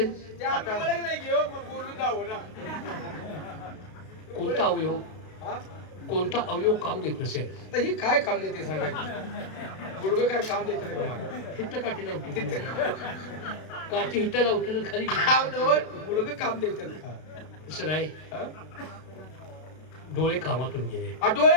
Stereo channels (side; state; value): right; late; 32 ms